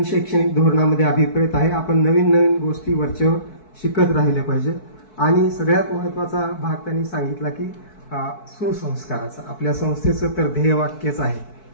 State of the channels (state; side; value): late; right; 4.6 ms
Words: शैक्षणिक धोरणामध्ये अभिप्रेत आहे. आपण नवीन नवीन गोष्टी वरचेवर शिकत राहिले पाहिजे. आणि सगळ्यात महत्वाचा भाग त्यांनी सांगितला की सुसंस्काराचा. आपल्या संस्थेचं तर ध्येयवाक्यच आहे